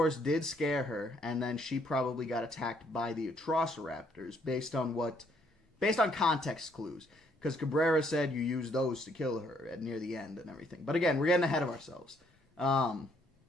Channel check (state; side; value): normal; both; correlation 0.69